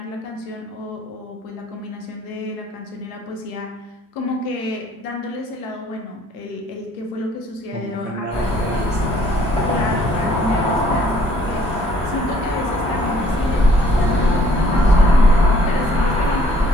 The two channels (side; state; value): both; normal; correlation 0.60